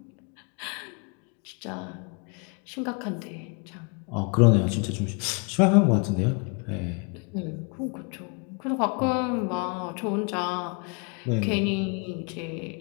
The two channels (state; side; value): quieter; right; 34.2 dB